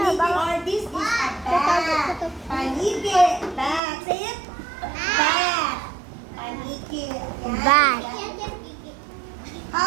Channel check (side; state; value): left; drops out; at 3.8 s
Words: or this is a bat. Paniki. Bat. Say it. Bat. Paniki. Yan. Bat.